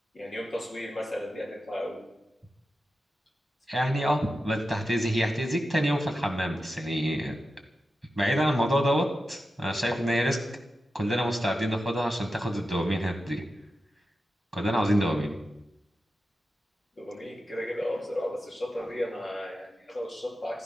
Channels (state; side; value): normal; both; correlation 0.91